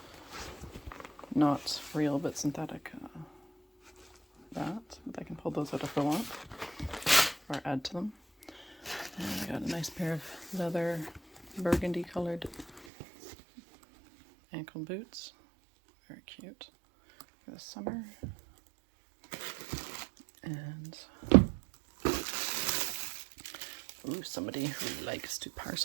not real but synthetic. But I can pull those out if I want, or add to them. And I got a nice pair of leather burgundy colored ankle boots. Very cute for the summer. And somebody who likes to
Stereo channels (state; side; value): drops out; left; at 12.9 s